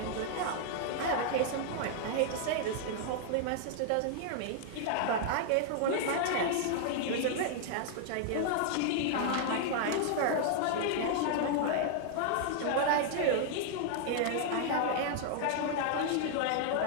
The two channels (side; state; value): both; different; correlation 0.00